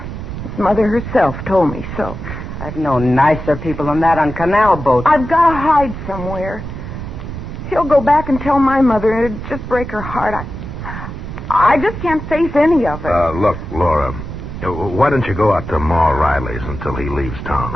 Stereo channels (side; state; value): right; noise; rumble, 8 dB below the sound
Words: His mother herself told me so. I've known nicer people than that on canal boats. I've got to hide somewhere. He'll go back and tell my mother, and it'd just break her heart. I just can't face any of it. Look, Laura, why don't you go out to Ma Riley's until he leaves town,